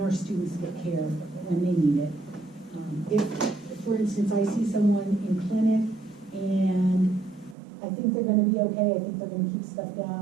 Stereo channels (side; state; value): left; drops out; at 7.6 s